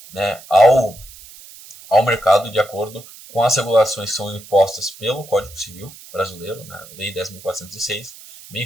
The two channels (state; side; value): noise; right; hiss, 19 dB below the sound